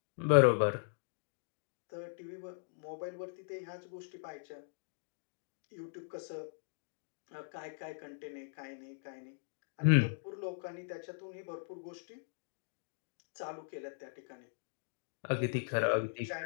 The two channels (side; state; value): right; silent; digital silence